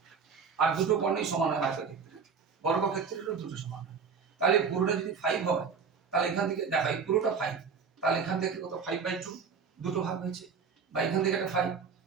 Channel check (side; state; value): left; quieter; 5.8 dB